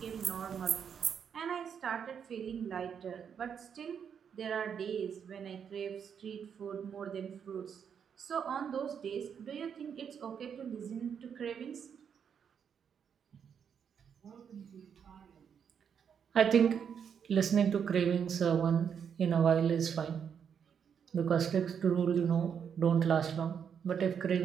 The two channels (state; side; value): quieter; left; 7.5 dB